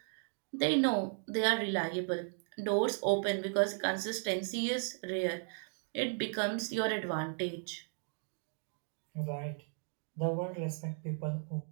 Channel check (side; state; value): left; silent; 54 dB below the other